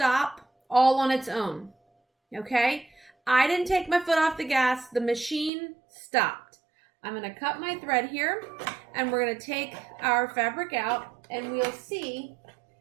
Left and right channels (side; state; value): left; drops out; at 5.5 s